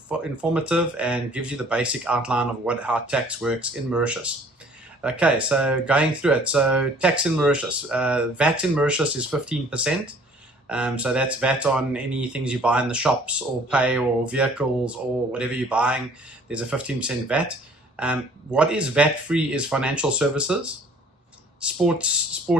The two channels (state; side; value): normal; both; correlation 0.54